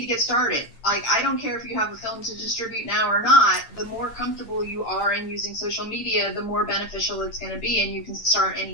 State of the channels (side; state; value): right; late; 8.8 ms